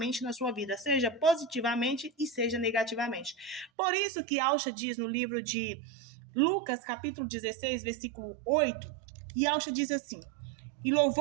na sua vida, seja positivamente e seja negativamente. Por isso que Alcha diz no livro de Lucas, capítulo 16, versículo 8, e Alcha diz assim: e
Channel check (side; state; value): left; drops out; at 3.7 s